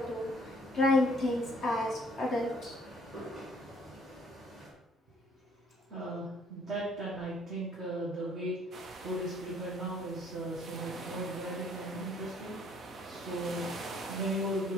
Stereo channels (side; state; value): both; normal; correlation 0.61